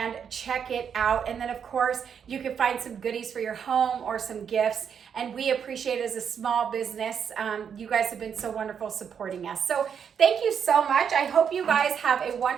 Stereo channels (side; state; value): left; quieter; 7.5 dB